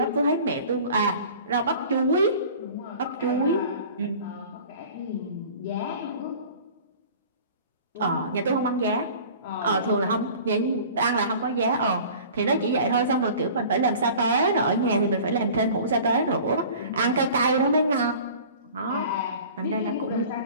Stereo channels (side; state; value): both; inverted; correlation -0.44